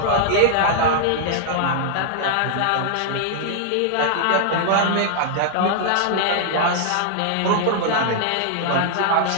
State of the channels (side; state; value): both; different; correlation -0.01